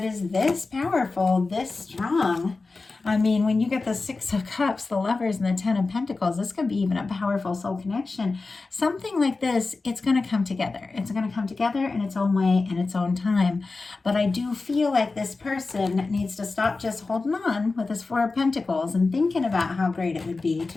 is this powerful, this strong. I mean, when you get the 6 of Cups, the Lovers, and the 10 of Pentacles, this could be even a powerful soul connection. Something like this, it's going to come together. It's going to come together in its own way, in its own time. But I do feel like this person needs to stop just holding on with this 4 of Pentacles and thinking about how great it would be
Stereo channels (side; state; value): right; quieter; 3.8 dB